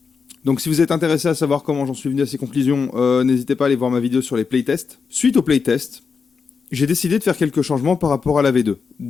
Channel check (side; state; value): right; quieter; 5.5 dB